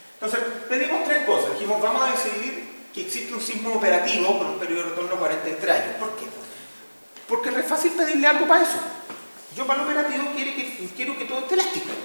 Entonces, pedimos tres cosas. Dijimos, vamos a decidir que existe un sismo operativo con un periodo de retorno de 43 años. ¿Por qué? Porque es re fácil pedirle algo para eso. Yo para el operativo quiero que todo esté elástico.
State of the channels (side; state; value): both; inverted; correlation -1.00